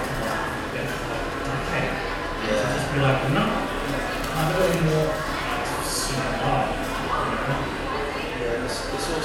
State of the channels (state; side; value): identical; both; correlation 1.00